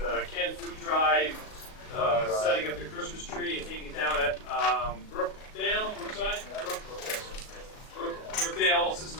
canned food drive, setting up the Christmas tree and taking it down at Brookdale.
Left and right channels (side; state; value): right; late; 37 ms